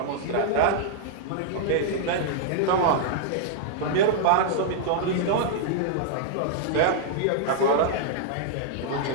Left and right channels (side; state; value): both; different; correlation -0.02